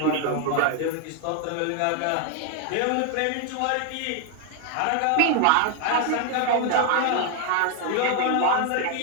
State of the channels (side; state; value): both; different; correlation 0.00